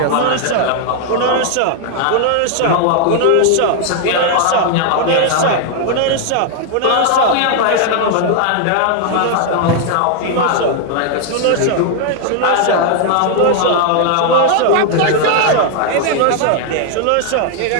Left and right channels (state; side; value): different; both; correlation 0.00